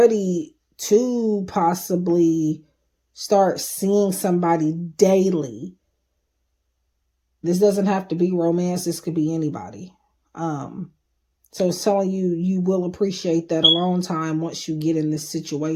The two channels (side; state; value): both; identical; correlation 1.00